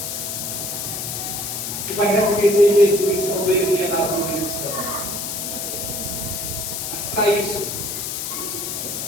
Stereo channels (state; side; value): noise; left; hiss, 4 dB below the sound